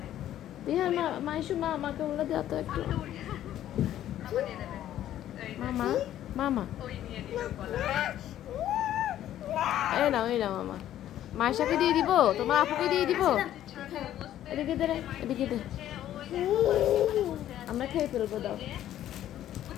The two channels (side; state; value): right; quieter; 12.1 dB